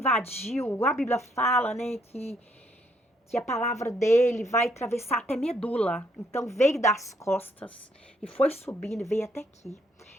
A Bíblia fala, né, que a palavra dele vai atravessar até medula. Então, veio das costas e foi subindo e veio até aqui.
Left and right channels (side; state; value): both; normal; correlation 0.71